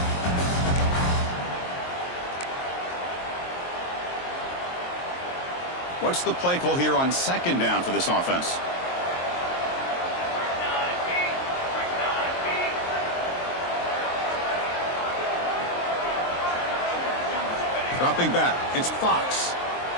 What's the play call here on 2nd down for this offense? Dropping back, it's Fox.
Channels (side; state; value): right; late; 23 ms